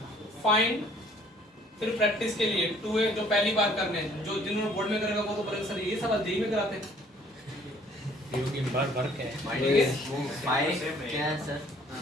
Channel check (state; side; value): normal; both; correlation 0.58